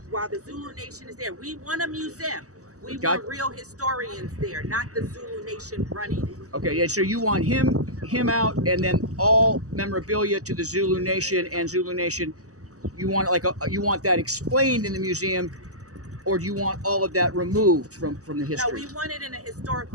While the Zulu Nation is there, we want a museum. We Got- want real historians there, not the Zulu Nation running it. Okay, yeah, so you want him out, and then all memorabilia to the Zulu Nation and Zulu Nation. You want you want that explained in the museum, or do you want all of that removed from the No, history? we want it in a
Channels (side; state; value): left; late; 0.66 ms